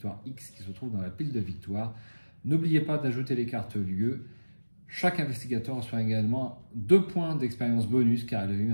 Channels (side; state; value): both; inverted; correlation -1.00